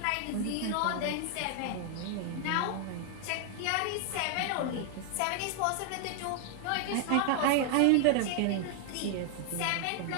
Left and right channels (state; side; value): different; both; correlation 0.00